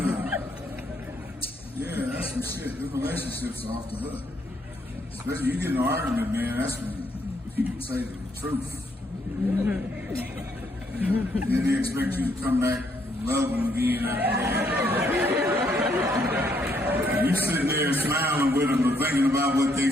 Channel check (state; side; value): normal; both; correlation 0.72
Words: Yeah, that's some shit. The relationships are off the hook. Especially you get in an argument, man, that's when people say the truth. Then they expect you to come back and love them again after that. You sitting there smiling with them and thinking about what they